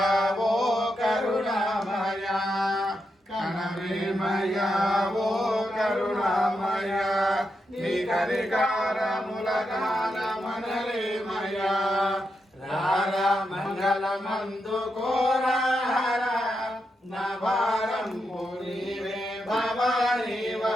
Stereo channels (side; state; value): both; normal; correlation 0.85